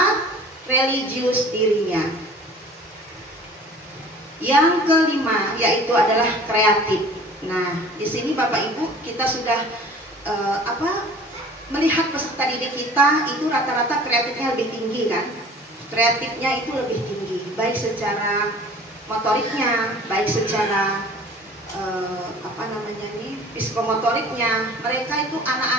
religius dirinya. Yang kelima yaitu adalah kreatif. Nah, di sini Bapak Ibu kita sudah melihat peserta didik kita itu rata-rata kreatifnya lebih tinggi kan? Kreatifnya itu lebih tinggi, baik secara motoriknya, baik secara psikomotoriknya. Mereka itu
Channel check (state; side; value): normal; both; correlation 0.46